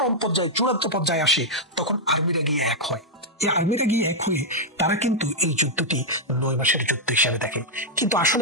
পর্যায়ে, চূড়ান্ত পর্যায়ে আসে, তখন আর্মিরা গিয়ে এক হয়। এই আর্মিরা গিয়ে এক হয়ে তারা কিন্তু এই যুদ্ধটি 9 মাসের যুদ্ধ হিসাবে দেখে। কিন্তু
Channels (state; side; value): normal; both; correlation -0.04